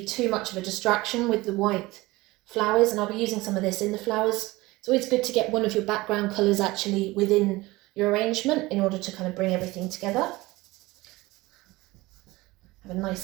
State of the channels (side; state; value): left; quieter; 20.4 dB